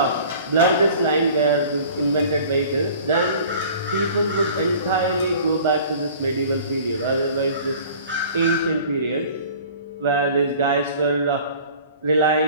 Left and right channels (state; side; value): inverted; both; correlation -0.46